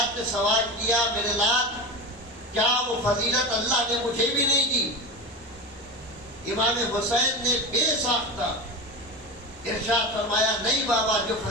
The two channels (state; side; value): normal; both; correlation 0.24